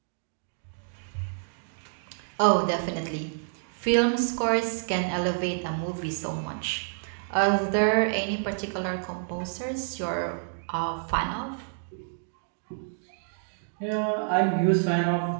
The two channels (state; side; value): silent; left; digital silence